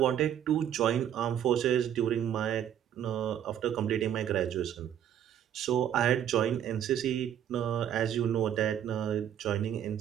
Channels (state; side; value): quieter; left; 10.0 dB